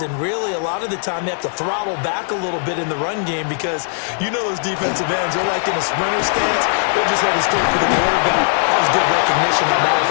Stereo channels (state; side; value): silent; right; 67 dB below the other